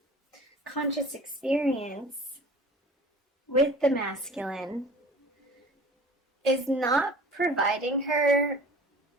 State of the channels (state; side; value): normal; both; correlation 0.43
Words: conscious experience with the masculine is not providing her